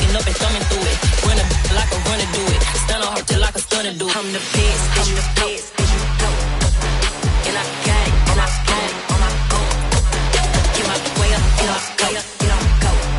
up and thumbing through it. Run a like a runner do it. Stun on her till like a stunner do it. I'm the best, I'm the best, and you know. And I got it, and I got it on my own. Get my way up, and I go, and I go.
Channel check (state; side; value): identical; both; correlation 1.00